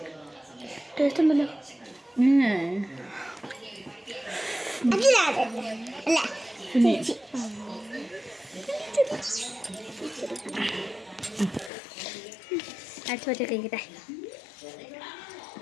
ടേസ്റ്റ് ഉണ്ടല്ലോ. അച്ഛൻ കഴിക്കട്ടെ.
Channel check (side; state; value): right; drops out; at 11.7 s